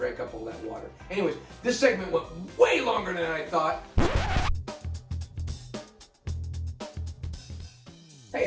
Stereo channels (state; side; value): identical; both; correlation 1.00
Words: up all that water. Anyways, this segment went way longer than I thought.